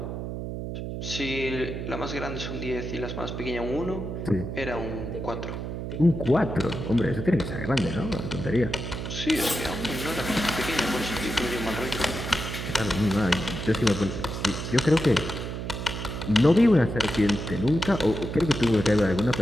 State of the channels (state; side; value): noise; right; hum, 5 dB below the sound